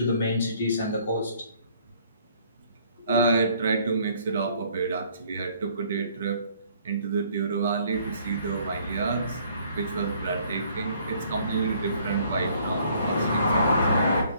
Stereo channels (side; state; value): both; inverted; correlation -0.61